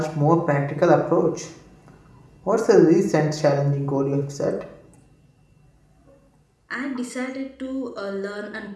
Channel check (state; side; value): identical; both; correlation 1.00